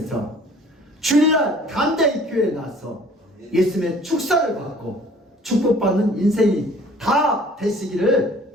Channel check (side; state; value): both; normal; correlation 0.52